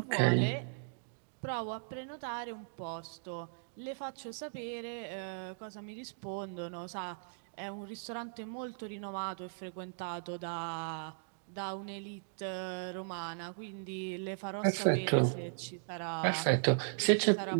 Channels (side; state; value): left; silent; digital silence